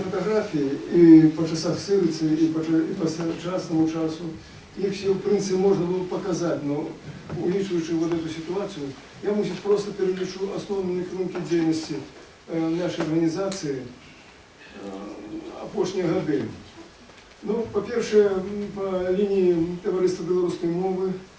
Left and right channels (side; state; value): both; identical; correlation 1.00